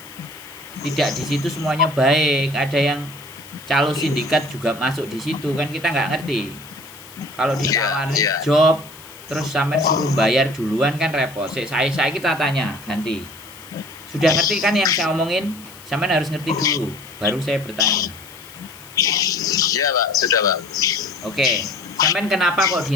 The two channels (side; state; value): left; noise; hiss, 20 dB below the sound